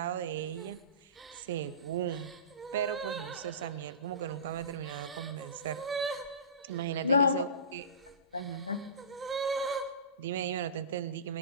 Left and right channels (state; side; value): inverted; both; correlation -0.32